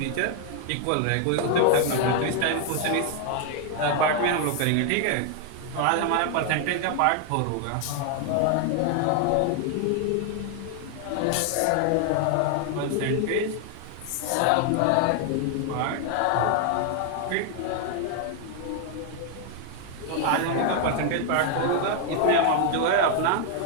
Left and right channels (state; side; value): different; both; correlation 0.00